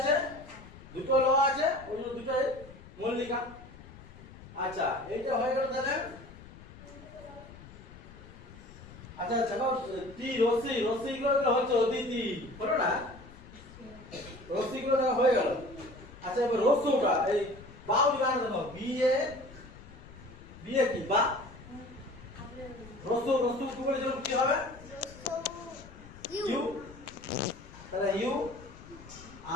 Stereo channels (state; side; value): noise; left; rumble, 18 dB below the sound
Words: দুটো ল আছে ওই জন্য দুটো মল্লিকা আচ্ছা এইটা হয়ে গেল তাহলে আচ্ছা দেখো টি রসি রসি গুলো হচ্ছে অদিতি বলো না রসি গুলো হয়ে গেল আচ্ছা এবার রসুটা এই বাউ গান দেখো বি এ কি বা রসু রসু কি বলে কি হবে ইউ তাহলে ইউ